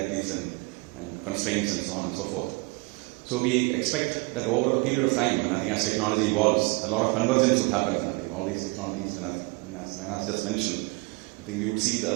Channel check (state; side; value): quieter; left; 27.4 dB